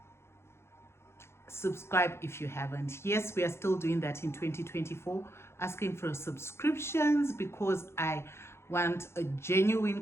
Yes, we are still doing that in 2024, asking for subscriptions because I want a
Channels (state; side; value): late; right; 0.12 ms